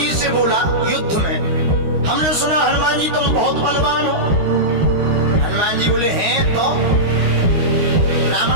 से बोला युद्ध में, हमने सुना हनुमान जी तुम बहुत बलवान हो। हनुमान जी बोले हैं तो।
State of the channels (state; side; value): late; left; 13 ms